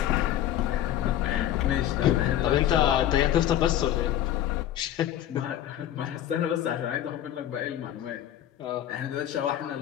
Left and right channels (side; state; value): right; quieter; 11.7 dB